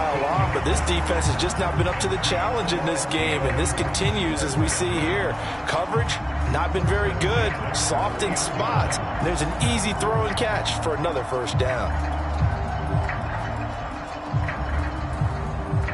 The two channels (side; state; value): both; identical; correlation 1.00